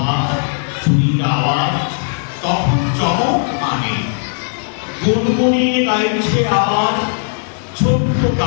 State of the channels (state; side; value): silent; right; digital silence